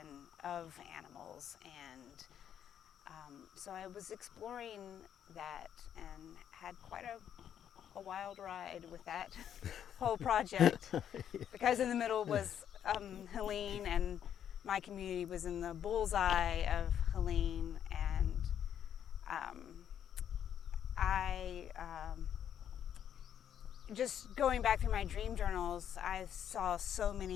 of animals, and so I was exploring that and had quite a wild ride with that whole project, because in the middle was Helene, and my community was in the bullseye of Helene, and I just going back through my dream journals, I saw so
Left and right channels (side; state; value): right; quieter; 9.4 dB